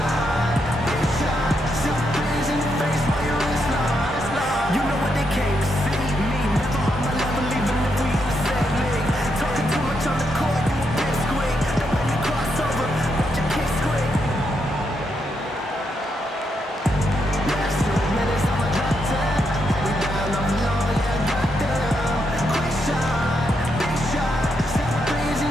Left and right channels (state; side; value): normal; both; correlation 0.80